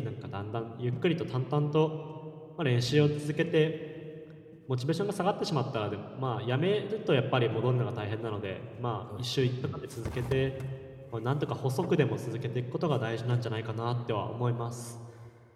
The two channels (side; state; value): both; identical; correlation 1.00